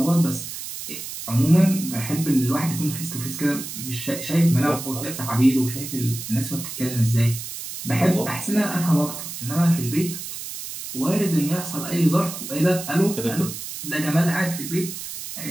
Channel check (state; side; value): noise; right; hiss, 9 dB below the sound